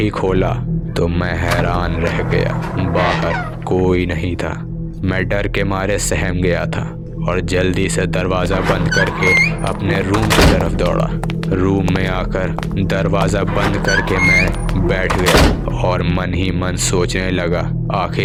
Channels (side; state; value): both; identical; correlation 1.00